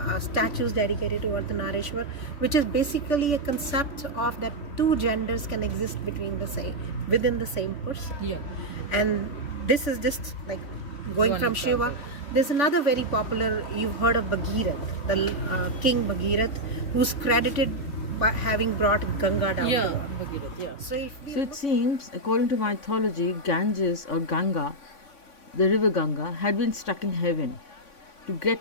statues dedicated to Ardhanarishwar, which is basically a concept of that 2 genders can exist within the same person. Yeah. And this is just like going One from example. Shiva. There's another very popular, you've heard of Bhagirath, the King Bhagirath, who's credited by having brought Ganga down to earth. Bhagirath, yeah. So if we So it seems, according to mythology, Ganges or Ganga, the river Ganga, had been stuck in heaven. To get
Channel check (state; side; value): late; right; 3.5 ms